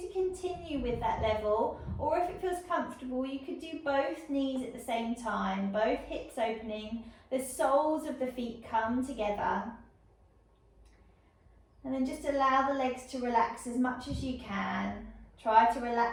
to continue with that level, or if it feels comfortable, you could do both knees at the same time, both hips opening, the soles of the feet come together. And then just allow the legs to relax as much as you can. Try to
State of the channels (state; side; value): identical; both; correlation 1.00